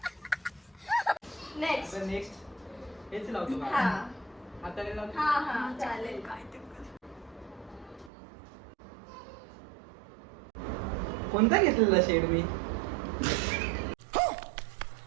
नेक्स्ट. आता नेक्स्ट हेच लावतो का? हा हाताने लावतो. हा चालेल. काय ते कर. कोणता घेतलेला शेड मी?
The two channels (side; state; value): left; drops out; at 8.1 s